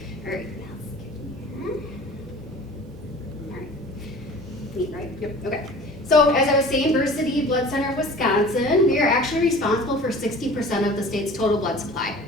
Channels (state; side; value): normal; both; correlation 0.43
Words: All right, now let's get here. All right, neat, right? Yep. Okay, so as I was saying, Versiti Blood Center of Wisconsin, we are actually responsible for 60% of the state's total blood supply.